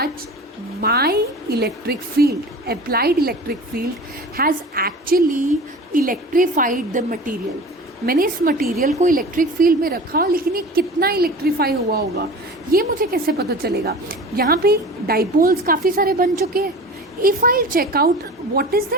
my electric field, applied electric field, has actually electrified the material. मैंने इस material को electric field में रखा, लेकिन ये कितना electrify हुआ होगा ये मुझे कैसे पता चलेगा? यहाँ पे डाइपोल्स काफ़ी सारे बन चुके हैं. If I check out what is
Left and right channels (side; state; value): both; normal; correlation 0.37